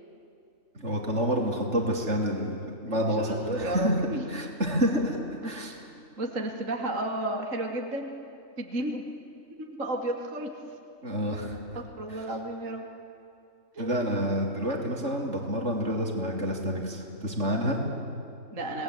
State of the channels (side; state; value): left; late; 3.4 ms